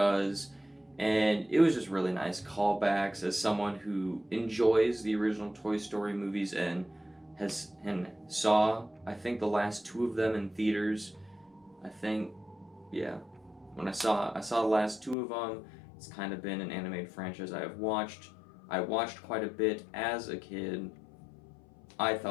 and it was just really nice callbacks. As someone who enjoys the original Toy Story movies and saw, I think, the last two of them in theaters. When I saw the last two of them, it's kind of been an animated franchise I have watched. I watched quite a bit as a kid. I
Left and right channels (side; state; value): right; drops out; at 15.2 s